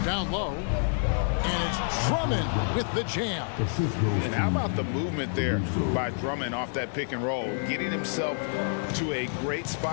Down low. And it's Drummond with the jam. And how about the movement there by Drummond off that pick and roll, getting himself to a great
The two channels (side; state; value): right; silent; 59 dB below the other